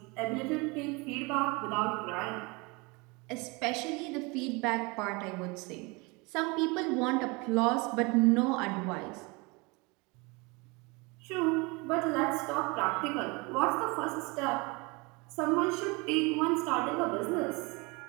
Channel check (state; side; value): quieter; left; 27.3 dB